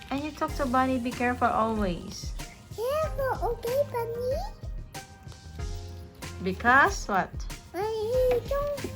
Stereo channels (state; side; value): identical; both; correlation 1.00